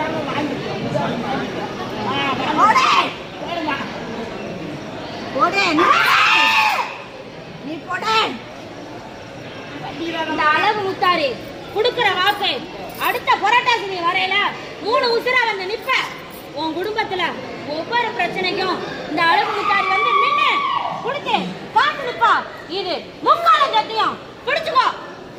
இந்த அளவு முத்தாரு குடுக்கிற வாக்கு அடுத்த புரட்டாசி வரையில 3 உசுரா வந்து நிப்ப. உன் குடும்பத்துல ஒவ்வொரு பிரச்சனைக்கும் இந்த அளவு முத்தாரி வந்து நின்னு குடுத்து காத்து நிப்பா. இது முக்கால சத்தியம். பிடிச்சுக்கோ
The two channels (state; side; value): identical; both; correlation 1.00